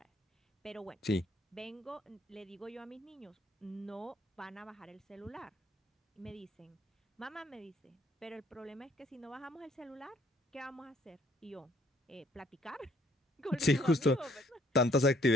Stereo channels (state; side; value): normal; both; correlation 0.63